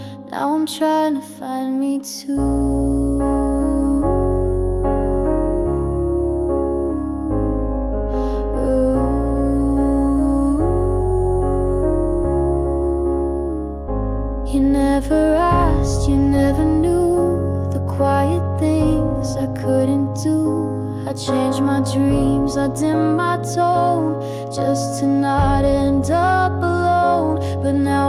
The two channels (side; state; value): both; identical; correlation 1.00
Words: Now I'm trying to find me too. I changed my dreams, I dimmed my tone, just to not end up alone. But